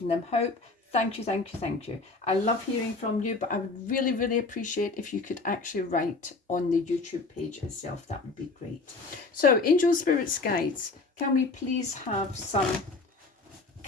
them hope. Thank you, thank you, thank you. I love hearing from you, but I would really, really appreciate if you could actually write on the YouTube page itself. That would be great. So, angel, spirits, guides, can we please have some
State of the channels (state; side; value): quieter; right; 3.7 dB